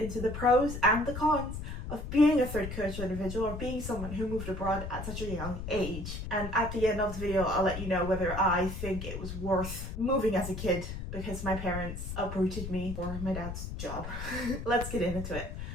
the pros and the cons of being a third culture individual or being someone who moved abroad at such a young age. And at the end of the video, I'll let you know whether I think it was worth moving as a kid because my parents uprooted me for my dad's job. Let's get into it.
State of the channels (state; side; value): noise; left; rumble, 7 dB below the sound